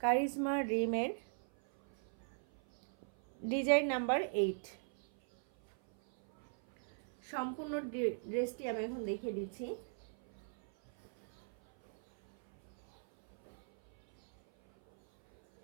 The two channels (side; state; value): left; silent; 52 dB below the other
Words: রিমের ডিজাইন নাম্বার 8। সম্পূর্ণ ড্রেসটি আমি এখন দেখিয়ে দিচ্ছি।